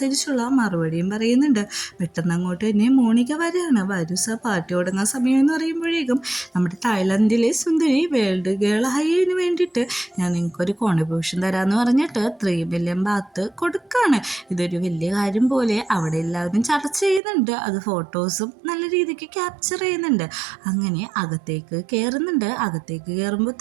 മറുപടിയും പറയുന്നുണ്ട്. പെട്ടെന്ന് അങ്ങോട്ട് തന്നെ മോണിക വരികയാണ്. വരൂ സാർ, പാർട്ടി തുടങ്ങാൻ സമയം എന്ന് പറയുമ്പോഴേക്കും നമ്മുടെ തായ്ലൻഡിലെ സുന്ദരി വേൾഡ് ഗേൾ ആയതിന് വേണ്ടിയിട്ട് ഞാൻ നിങ്ങൾക്കൊരു കോൺട്രിബ്യൂഷൻ തരാമെന്ന് പറഞ്ഞിട്ട് 3 മില്യൺ ബാത്ത് കൊടുക്കുകയാണ്. ഇതൊരു വലിയ കാര്യം പോലെ അവിടെ എല്ലാവരും ചർച്ച ചെയ്യുന്നുണ്ട്. അത് ഫോട്ടോസും നല്ല രീതിക്ക് ക്യാപ്ചർ ചെയ്യുന്നുണ്ട്. അങ്ങനെ അകത്തേക്ക് കയറുന്നുണ്ട്. അകത്തേക്ക് കയറുമ്പോൾ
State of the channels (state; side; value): drops out; left; at 17.2 s